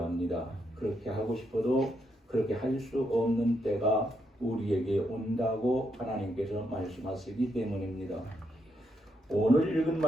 합니다. 그렇게 하고 싶어도 그렇게 할 수 없는 때가 우리에게 온다고 하나님께서 말씀하시기 때문입니다. 오늘 읽은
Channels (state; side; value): normal; both; correlation 0.78